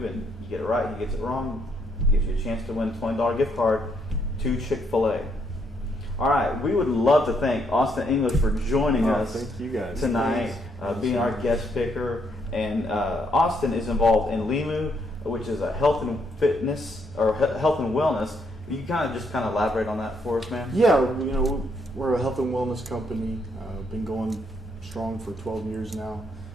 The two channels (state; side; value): normal; both; correlation 0.73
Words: and you get it right, he gets it wrong, it gives you a chance to win a $20 gift card to Chick-fil-A. All right, we would love to thank Auston English for joining us thank you guys. tonight, being our guest picker. And Auston is involved in Limu, which is a health and fitness or health and wellness. You kind of elaborate on that for us, man? Yeah, we're a health and wellness company. Been going strong for 12 years now.